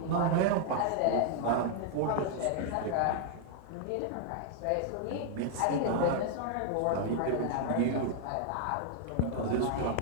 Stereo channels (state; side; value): different; both; correlation -0.01